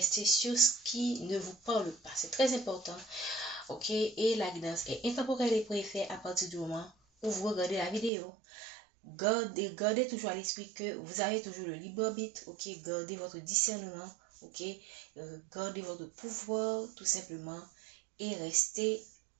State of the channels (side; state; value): left; drops out; at 8.1 s